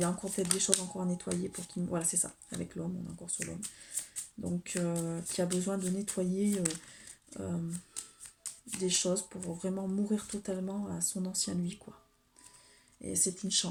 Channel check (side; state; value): both; identical; correlation 1.00